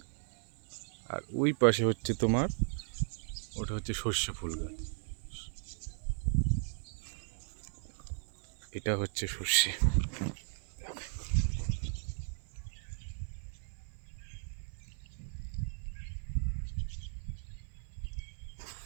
আর ওই পাশে হচ্ছে তোমার, ওটা হচ্ছে সর্ষে ফুল গাছ, এটা হচ্ছে সর্ষে।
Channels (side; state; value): left; silent; 53 dB below the other